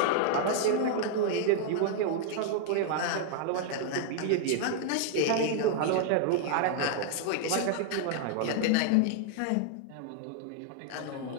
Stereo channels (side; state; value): both; different; correlation 0.00